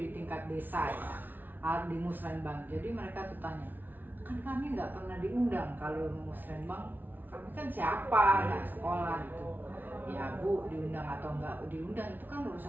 tingkat desa ya, di Musrenbang. Jadi mereka tuh tanya, kan kami nggak pernah diundang kalau Musrenbang, kami kan siapa, nggak sekolah gitu. Ya Bu, diundang atau nggak diundang itu kan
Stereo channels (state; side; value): late; left; 0.087 ms